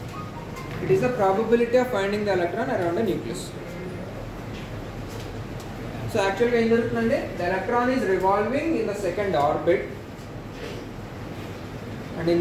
It is the probability of finding the electron around the nucleus. So యాక్చువల్గా ఏం జరుగుతుందంటే the electron is revolving in the second orbit, and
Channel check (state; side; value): identical; both; correlation 1.00